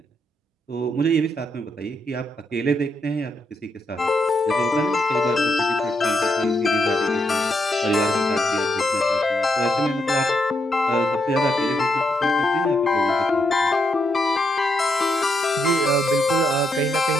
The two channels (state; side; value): normal; both; correlation 0.79